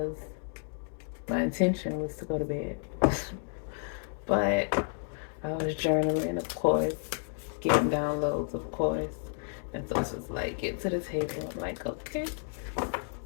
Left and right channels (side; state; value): right; silent; 57 dB below the other